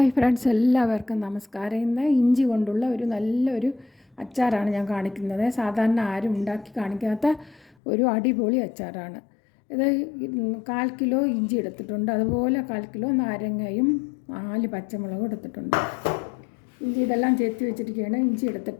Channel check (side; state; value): right; drops out; at 7.8 s